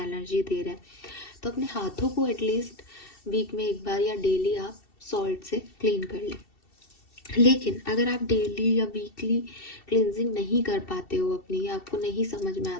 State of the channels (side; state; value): right; late; 2.7 ms